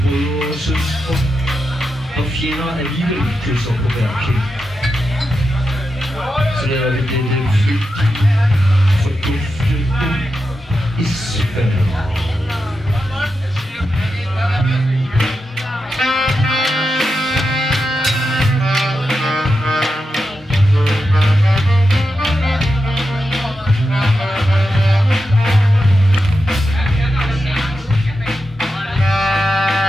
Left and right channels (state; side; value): normal; both; correlation 0.88